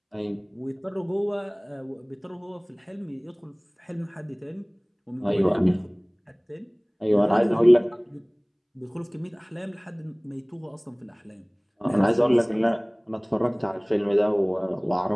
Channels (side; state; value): both; identical; correlation 1.00